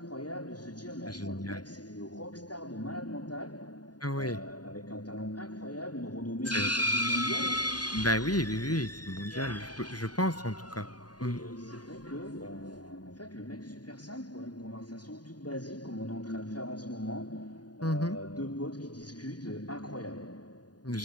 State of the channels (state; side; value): late; right; 0.69 ms